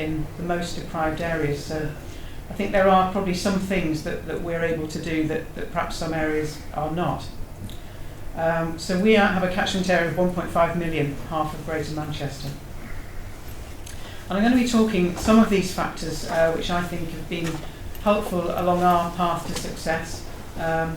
the most deprived areas. So I think there are probably some things that we're able to do that perhaps some areas are not. So we have a catchment area of 1.5 million, half of Greater Manchester. And I'm going to be talking some of these factors which I think have been helpful along our path to success.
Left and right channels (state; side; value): identical; both; correlation 1.00